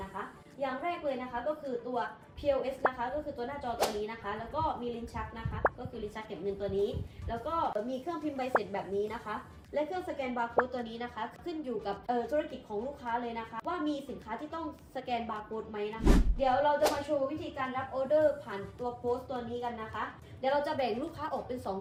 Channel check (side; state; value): both; identical; correlation 1.00